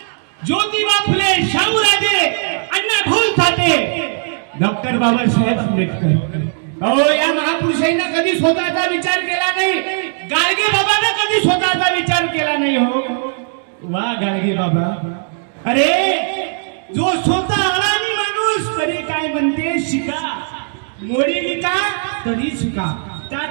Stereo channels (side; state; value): left; silent; digital silence